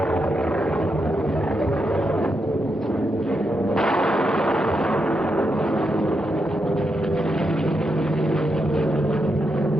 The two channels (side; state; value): both; normal; correlation 0.84